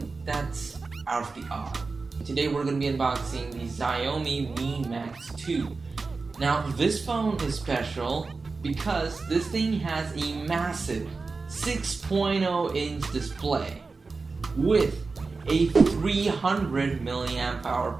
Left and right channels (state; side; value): quieter; left; 4.1 dB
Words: that's out of the odd. Today we're going to be unboxing the Xiaomi Mi Max 2. Now this phone is special because this thing has a massive 6.0 inch display with a 300 milliamp hour